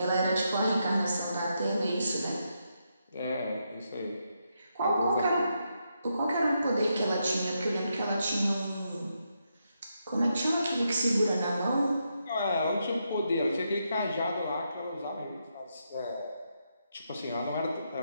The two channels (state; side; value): inverted; both; correlation -0.82